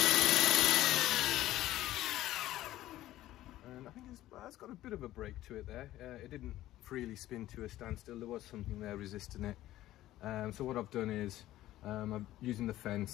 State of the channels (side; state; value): right; quieter; 14.8 dB